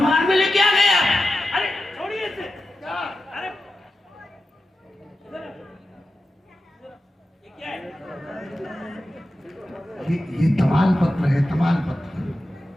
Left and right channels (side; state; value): both; normal; correlation 0.92